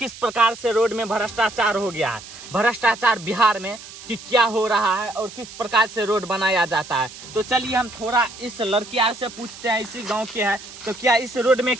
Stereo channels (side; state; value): right; noise; hiss, 16 dB below the sound